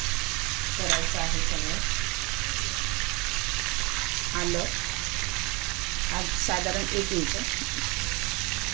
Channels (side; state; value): left; quieter; 26.3 dB